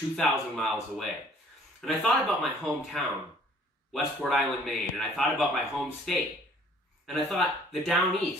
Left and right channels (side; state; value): both; normal; correlation 0.56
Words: miles away. And I thought about my hometown, Westport Island, Maine, and I thought about my home state. And I thought, the down